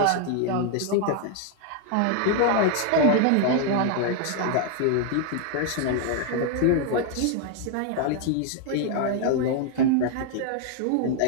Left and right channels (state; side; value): different; both; correlation 0.00